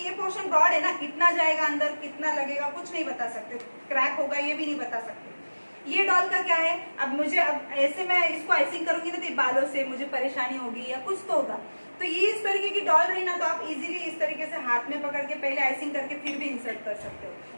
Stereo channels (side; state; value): both; inverted; correlation -1.00